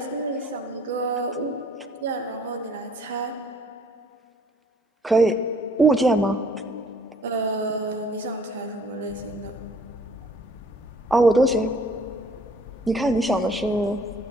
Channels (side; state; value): both; normal; correlation 0.58